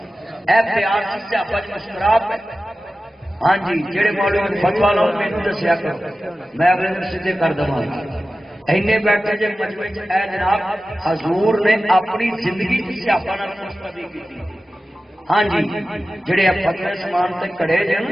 مسکرا ہاں جی جہے مولوی فتوا لاؤ مینو دسیا کرو میں اگلے دن سیدھے کر دوں اینے بیٹھے جی مجمے اے جناب حضور نے اپنی زندگی کی سیاپا ہاں جی جڑے فتوے سمان تے کڑے جن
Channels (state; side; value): normal; both; correlation 0.95